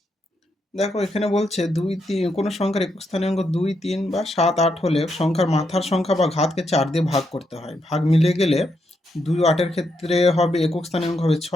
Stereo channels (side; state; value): both; normal; correlation 0.80